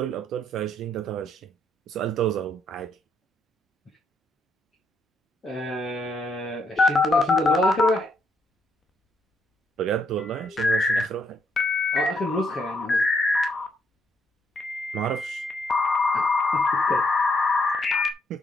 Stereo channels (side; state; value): both; normal; correlation 0.74